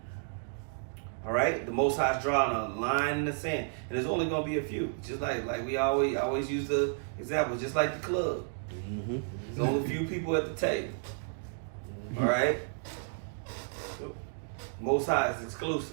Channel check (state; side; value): silent; left; digital silence